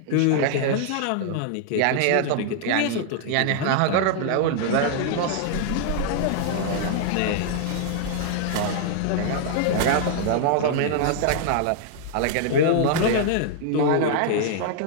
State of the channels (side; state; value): both; different; correlation -0.01